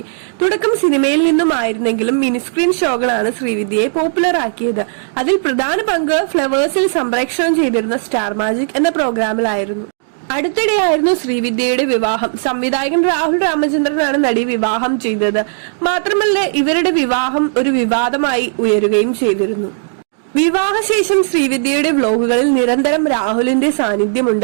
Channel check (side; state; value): left; silent; digital silence